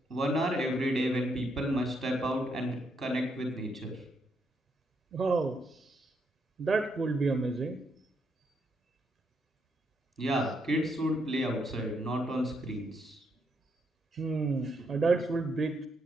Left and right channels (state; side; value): normal; both; correlation 0.77